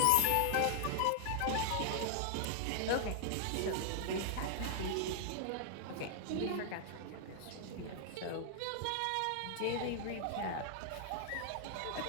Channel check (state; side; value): different; both; correlation 0.00